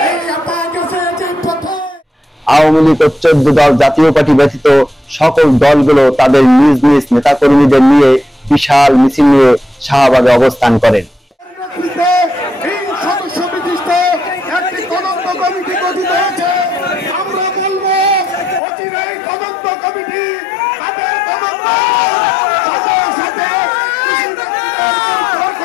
আওয়ামী লীগ ও 14 দল জাতীয় পার্টি ব্যতীত সকল দলগুলো তাদের নিজ নিজ নেতাকর্মীদের নিয়ে বিশাল মিছিল নিয়ে শাহবাগে অবস্থান করেন।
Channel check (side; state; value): right; drops out; at 18.6 s